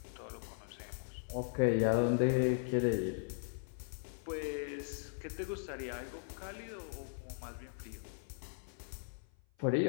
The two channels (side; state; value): right; silent; 52 dB below the other